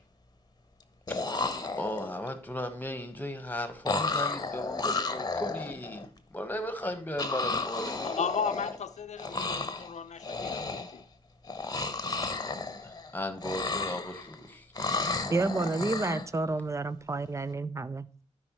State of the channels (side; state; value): both; normal; correlation 0.44